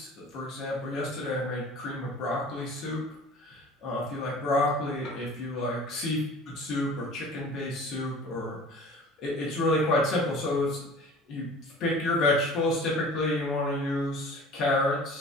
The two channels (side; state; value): both; normal; correlation 0.43